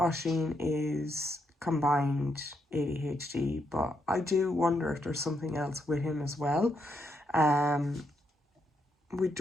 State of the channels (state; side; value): normal; both; correlation 0.79